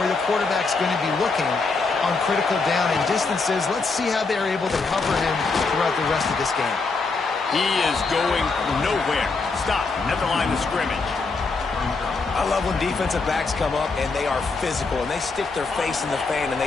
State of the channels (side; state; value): right; quieter; 4.1 dB